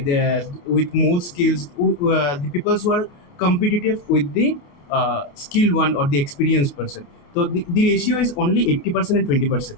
with more skills, the people who are competitive with the skilled one or the experienced person. So the ratio is only 80% and 20%.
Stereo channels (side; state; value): right; late; 29 ms